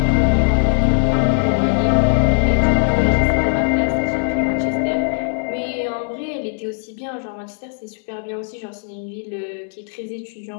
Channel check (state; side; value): silent; right; digital silence